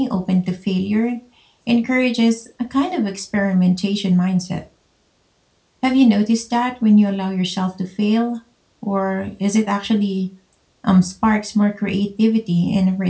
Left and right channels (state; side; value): identical; both; correlation 1.00